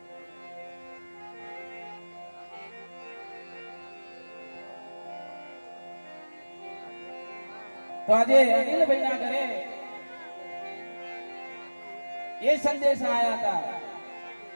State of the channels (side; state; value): both; inverted; correlation -1.00